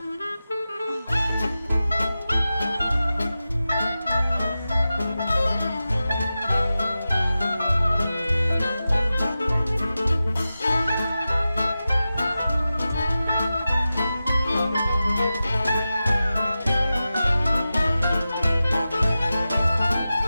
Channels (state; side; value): inverted; both; correlation -0.93